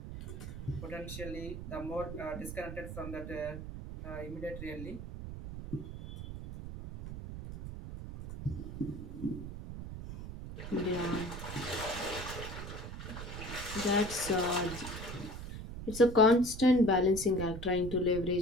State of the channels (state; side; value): noise; right; rumble, 9 dB below the sound